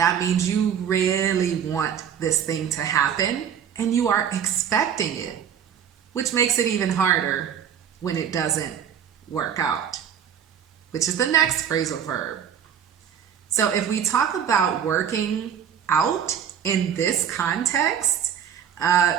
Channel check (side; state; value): left; quieter; 8.6 dB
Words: means you really want this thing to happen and you are expecting it, which makes it even harder when it doesn't work out, which is the next phrasal verb. So if we talk about working out in this context,